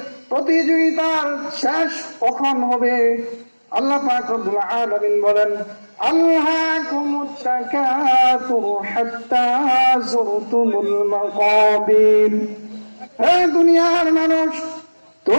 প্রতিযোগিতার শেষ কখন হবে। আল্লাহ পাক রব্বুল আলামিন বলেন, আল্লাকুমুত তাকাসুর হাত্তা যুরতুমুল মাকাবির। হে দুনিয়ার মানুষ,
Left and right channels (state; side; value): inverted; both; correlation -1.00